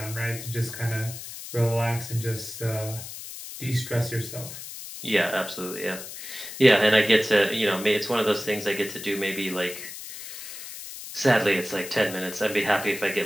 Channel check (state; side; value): noise; left; hiss, 11 dB below the sound